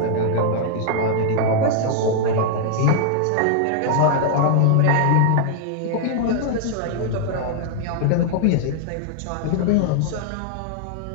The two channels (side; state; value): both; different; correlation -0.01